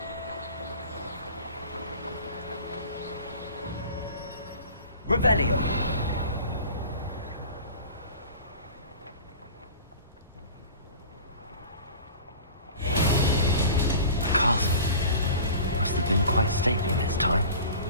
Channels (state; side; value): inverted; both; correlation -0.40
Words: Revelio. The castle must have been quite stately in its time.